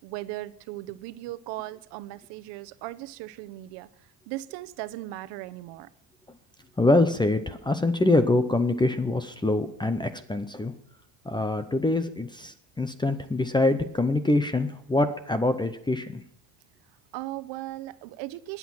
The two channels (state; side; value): normal; both; correlation 0.72